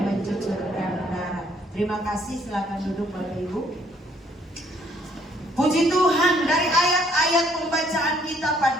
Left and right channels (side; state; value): both; normal; correlation 0.65